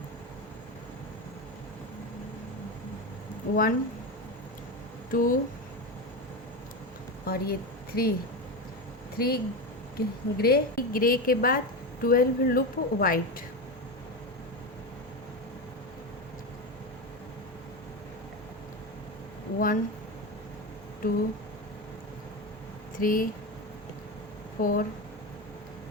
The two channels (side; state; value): both; normal; correlation 0.18